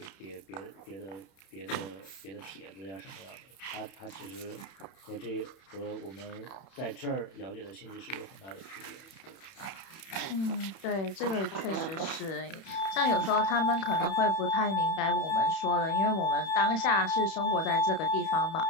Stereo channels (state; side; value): late; right; 31 ms